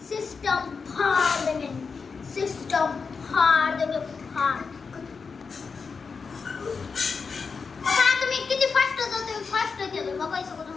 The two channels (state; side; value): quieter; right; 5.2 dB